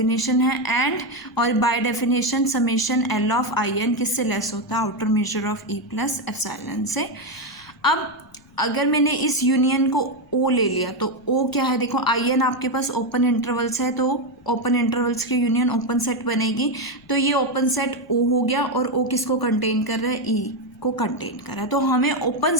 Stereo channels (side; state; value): left; noise; rumble, 30 dB below the sound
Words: है. एंड और by definition summation l of I n किससे लेस होता है, outer measure of E plus epsilon से. अब अगर मैंने इस यूनियन को ओ ले लिया तो ओ क्या है, देखो आई एन आपके पास ओपन इंटरवल्स है, तो ओपन इंटरवल्स की यूनियन ओपन सेट बनेगी. तो ये ओपन सेट ओ हो गया, और ओ किसको कंटेन कर रहा है, ई को कंटेन कर रहा है. तो हमें ओपन